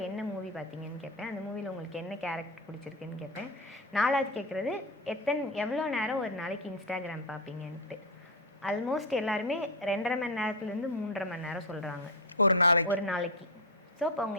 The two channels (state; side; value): normal; both; correlation 0.10